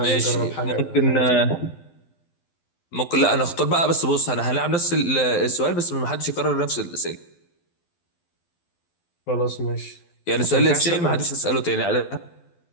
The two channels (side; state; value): right; late; 12 ms